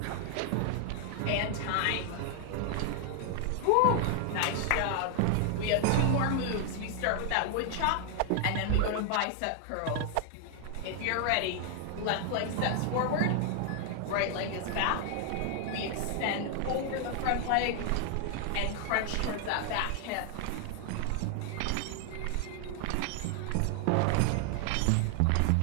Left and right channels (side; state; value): both; different; correlation 0.00